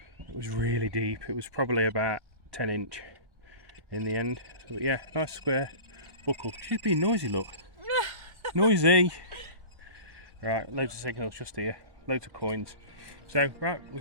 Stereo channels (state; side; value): late; left; 1.1 ms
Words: It was really deep. It was probably about 10 inch in the end. But yeah, nice square buckle. She's being noisy, look. Noisy. Right, loads of signals just here. Loads of coins. So, right, we're